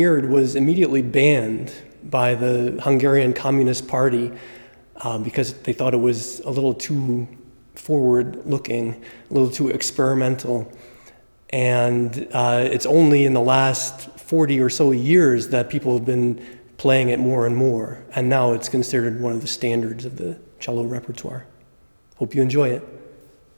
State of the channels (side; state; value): both; inverted; correlation -1.00